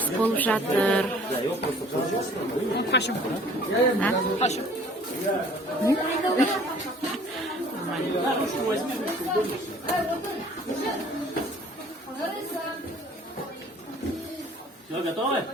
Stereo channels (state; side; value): normal; both; correlation 0.52